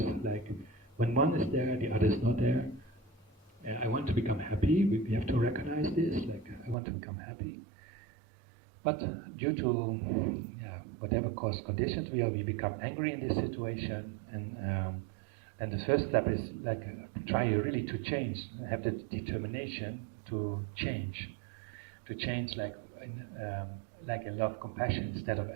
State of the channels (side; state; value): left; drops out; at 6.8 s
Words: like when one is there, the other is not there. I want to become happy. We have to recognize this, like I want to become happy. But due to whatever cause conditions we become angry in this situation, and the first step is like try really to change, have the determination to change like in love, compassion instead of